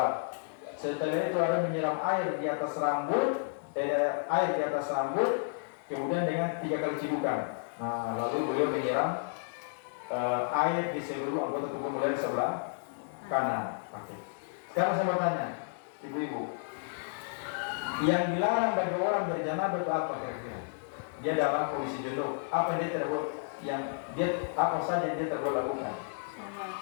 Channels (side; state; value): right; silent; digital silence